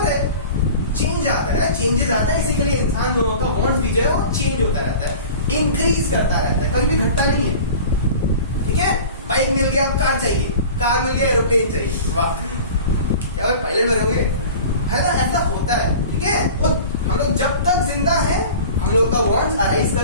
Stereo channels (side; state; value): both; inverted; correlation -0.39